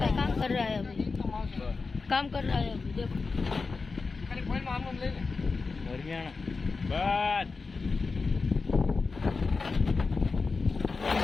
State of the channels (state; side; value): quieter; right; 4.3 dB